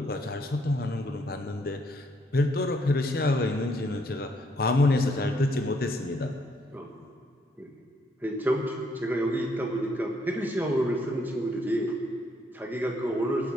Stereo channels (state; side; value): normal; both; correlation 0.70